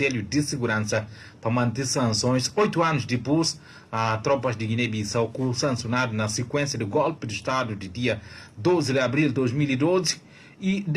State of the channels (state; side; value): identical; both; correlation 1.00